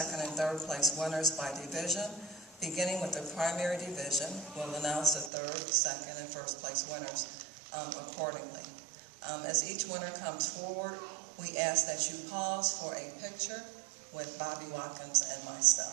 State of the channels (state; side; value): drops out; left; at 5.3 s